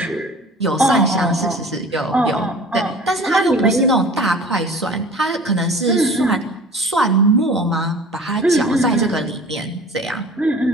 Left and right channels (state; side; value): normal; both; correlation 0.43